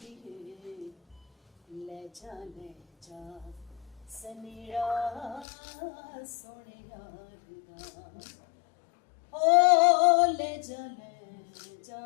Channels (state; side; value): drops out; right; at 5.5 s